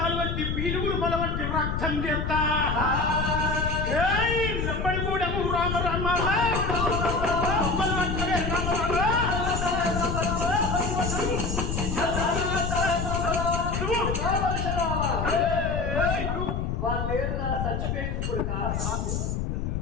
వంటి పీలుగురు మొల వంటి రక్తం చేస్తా లంబడి గూడము రామ రామ వాళ్ళు లేరు నా చచ్చిపోయింది కొడుక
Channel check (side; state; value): left; noise; rumble, 1 dB below the sound